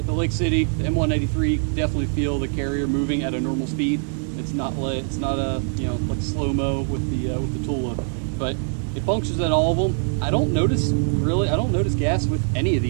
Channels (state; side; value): silent; left; digital silence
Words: City, the M193, definitely feel the carrier moving at a normal speed. It's not a like slow-mo with the Tula, but it functions at all of them. I don't notice gas with any of